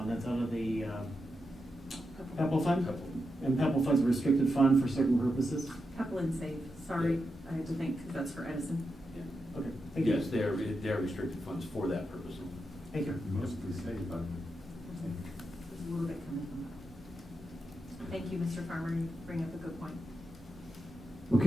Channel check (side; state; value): both; normal; correlation 0.87